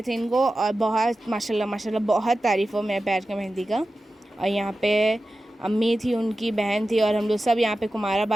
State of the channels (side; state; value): both; normal; correlation 0.94